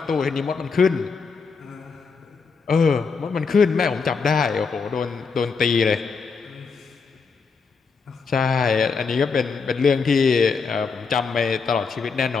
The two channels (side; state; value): right; quieter; 5.1 dB